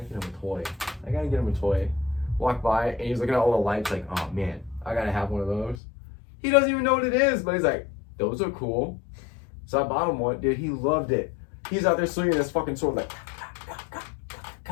gotta get him a toy. Walked by, and he's looking at all the lights like, oh man, I gotta have one of those. He doesn't even know what it is, but he's like, those are cool. So I bought him one. Dude, he loved it. He's out there swinging this fucking sword like,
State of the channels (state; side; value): drops out; right; at 5.8 s